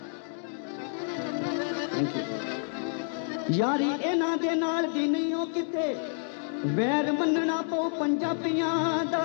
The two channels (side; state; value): right; silent; digital silence